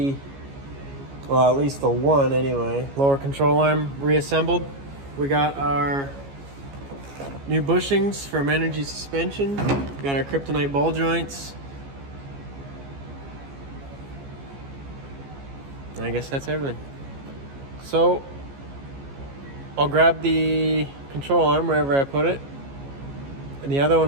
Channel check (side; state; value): left; late; 14 ms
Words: well, at least the one anyway, lower control arm reassembled. We got our new bushings from Energy Suspension. We got our Kryptonite ball joints. And I guess that's everything. So I'll grab the control arm wherever I put it. And the other